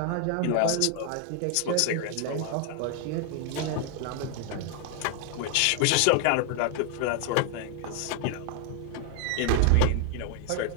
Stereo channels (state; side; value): different; both; correlation 0.00